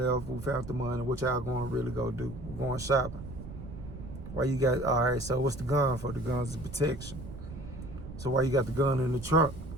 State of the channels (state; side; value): noise; right; rumble, 11 dB below the sound